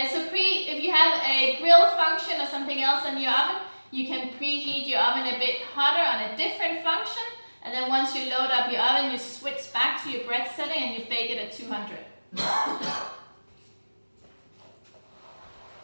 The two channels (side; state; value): both; inverted; correlation -1.00